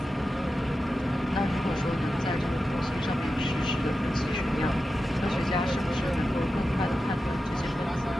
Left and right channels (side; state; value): both; normal; correlation 0.91